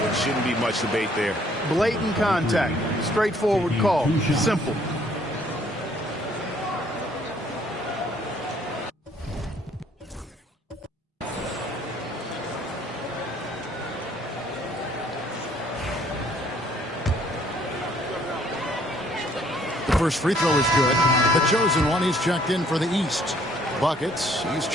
Shouldn't be much debate there. Blatant contact. Straightforward call. Simple. First free throw is good. The chosen one, he's checked in for the East. Buckets, he's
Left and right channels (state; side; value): normal; both; correlation 0.62